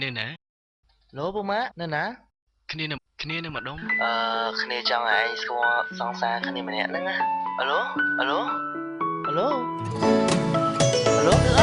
នៅណាឡូពូម៉ាក់នៅណាគ្នានៅម្ដុំគ្នាចង់ឲ្យឯងស្គាល់សង្សារគ្នាម្នាក់ហ្នឹងណាអាឡូអាឡូអាឡូអាឡូគឺអ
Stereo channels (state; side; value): identical; both; correlation 1.00